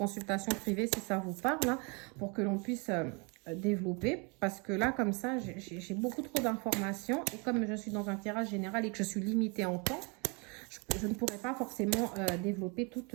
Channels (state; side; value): quieter; left; 32.1 dB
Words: privée si ça vous parle, hein, pour que l'on puisse développer parce que là, comme ça, j'ai beaucoup trop d'informations et comme je suis dans un tirage général et que je suis limitée en temps, je ne pourrais pas forcément développer toutes